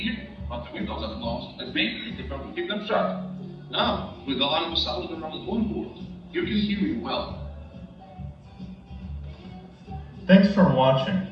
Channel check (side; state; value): both; identical; correlation 1.00